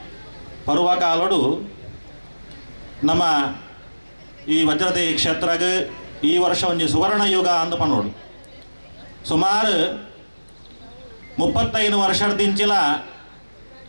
ಪರ್ವಕಾಲಡು ನಮ್ಮ ಈ ವಜ್ರದೇಹಿ ಕ್ಷೇತ್ರಗೆ ಈ ವರ್ಷ ಒಂದು ಸುವರ್ಣ ಯುಗ ಅಂದ ಪನ್ನೋಡು ಸುಮಾರು 35 ವರ್ಷದಿಂಚಿಲ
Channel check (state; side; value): inverted; both; correlation -1.00